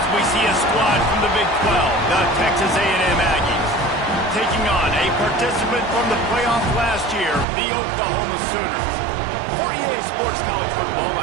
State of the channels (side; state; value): left; drops out; at 7.5 s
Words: we see a squad from the Big 12, the Texas A&M Aggies, taking on a participant from the playoff last year, the Oklahoma Sooners. For EA Sports College Football,